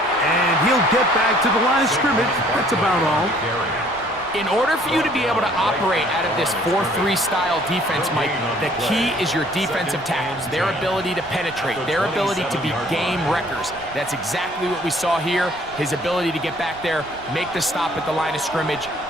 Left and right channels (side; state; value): right; noise; rumble, 21 dB below the sound